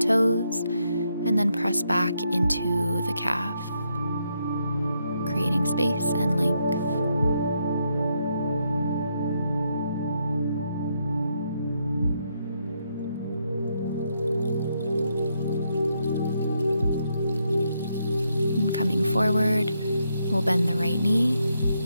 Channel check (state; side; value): inverted; both; correlation -0.78